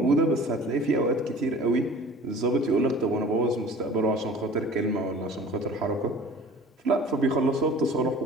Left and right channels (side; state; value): both; normal; correlation 0.45